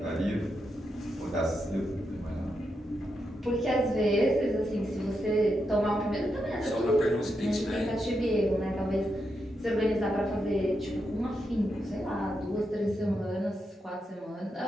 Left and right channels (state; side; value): normal; both; correlation 0.84